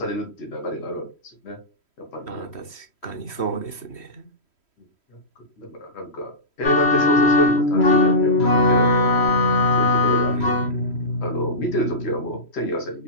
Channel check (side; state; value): right; late; 3.1 ms